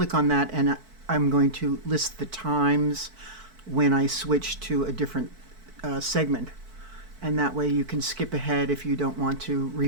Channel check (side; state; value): left; late; 4.5 ms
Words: on that, and I'm going to list the times when I switch to a different segment, and that way you can skip ahead if you don't want to